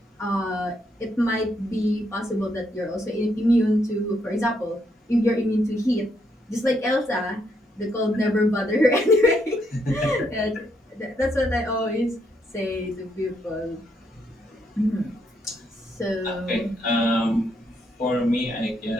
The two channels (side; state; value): both; normal; correlation 0.76